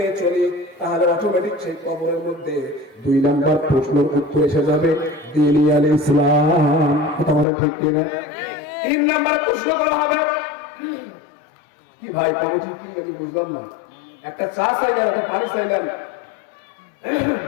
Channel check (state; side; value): drops out; right; at 7.5 s